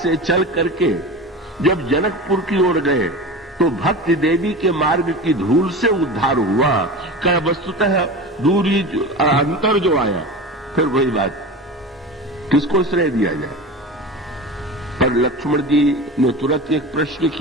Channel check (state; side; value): normal; both; correlation 0.30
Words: चल करके जब जनकपुर की ओर गए तो भक्ति देवी के मार्ग की धूल से उद्धार हुआ। क्या वस्तुतः दूरी अंतर जो आया, फिर वही बात, किसको श्रेय दिया जाए? पर लक्ष्मण जी ने तुरंत एक प्रश्न